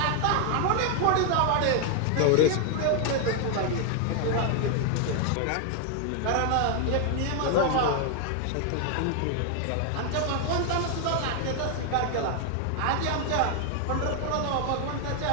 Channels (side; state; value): both; different; correlation 0.00